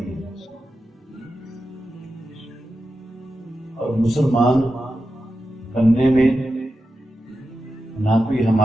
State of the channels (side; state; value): both; normal; correlation 0.90